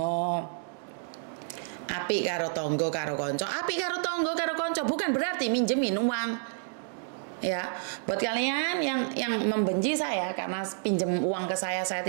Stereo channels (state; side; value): silent; left; digital silence